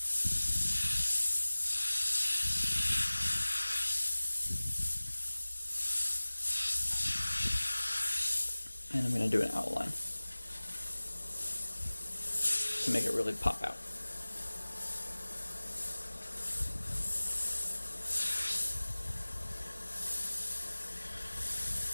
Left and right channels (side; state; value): both; inverted; correlation -1.00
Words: And I'm going to do an outline to make it really pop out.